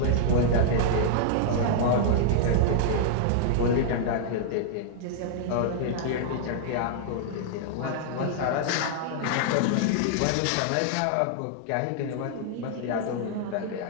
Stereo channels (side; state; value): both; different; correlation -0.01